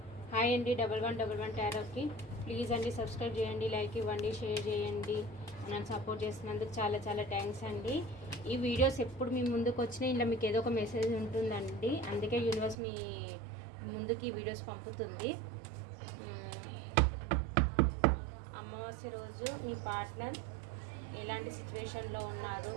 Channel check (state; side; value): drops out; left; at 12.8 s